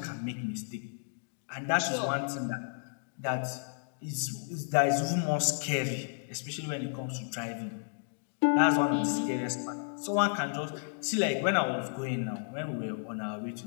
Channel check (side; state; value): right; silent; digital silence